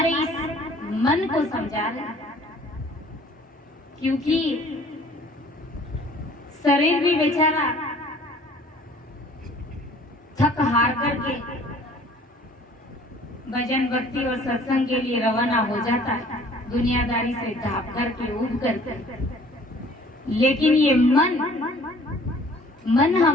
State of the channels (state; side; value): normal; both; correlation 0.53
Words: इस मन को समझा रहे। क्योंकि शरीर भी बेचारा थक हार करके भजन भक्ति और सत्संग के लिए रवाना हो जाता है, दुनियादारी से ढाप करके उठ करके। लेकिन ये मन